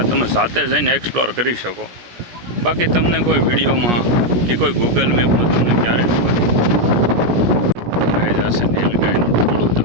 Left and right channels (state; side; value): late; left; 17 ms